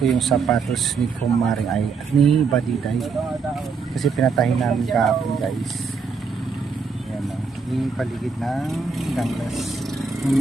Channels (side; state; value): left; quieter; 5.0 dB